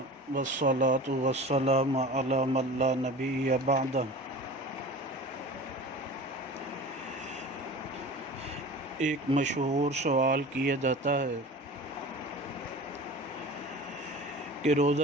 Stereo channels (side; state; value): both; normal; correlation 0.37